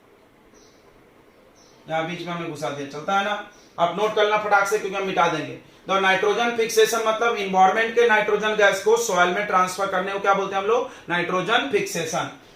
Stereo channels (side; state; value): both; identical; correlation 1.00